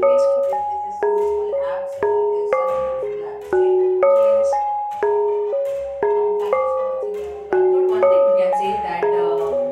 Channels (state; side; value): identical; both; correlation 1.00